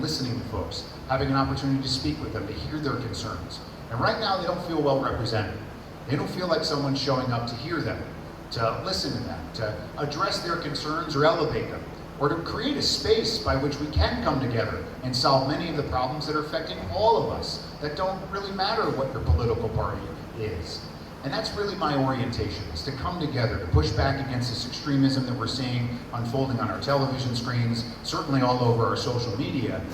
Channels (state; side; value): identical; both; correlation 1.00